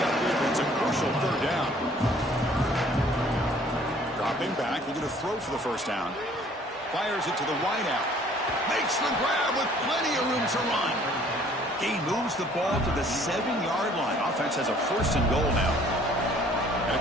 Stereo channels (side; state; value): both; normal; correlation 0.57